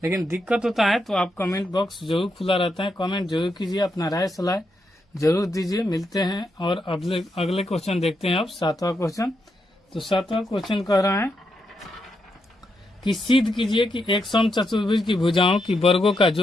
लेकिन दिक्कत होता है तो आप कमेंट बॉक्स जरूर खुला रहता है, कमेंट जरूर कीजिए, अपना राय सलाह जरूर दीजिए। मिलते हैं और अगले क्वेश्चन देखते हैं। अब 7वां क्वेश्चन। तो 7वां क्वेश्चन कह रहा है कि सिद्ध कीजिए कि एक समचतुर्भुज की भुजाओं की वर्गों का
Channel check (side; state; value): both; normal; correlation 0.82